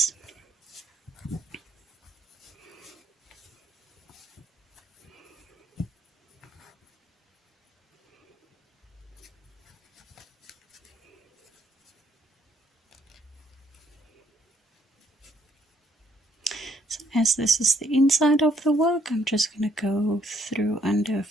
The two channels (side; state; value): both; normal; correlation 0.69